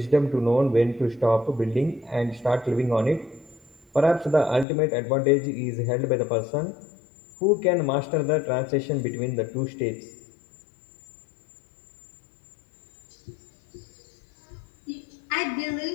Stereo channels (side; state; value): right; drops out; at 4.7 s